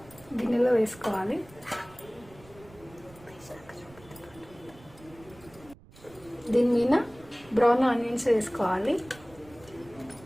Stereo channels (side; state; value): right; noise; rumble, 23 dB below the sound